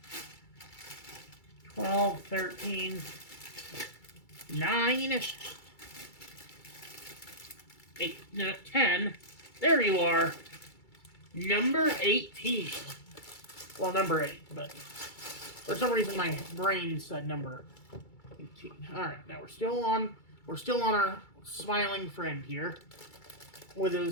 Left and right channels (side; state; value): right; late; 2.3 ms